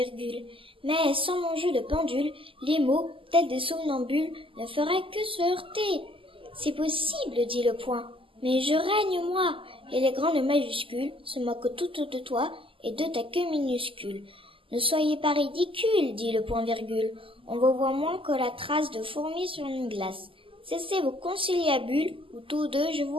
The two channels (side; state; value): left; late; 0.25 ms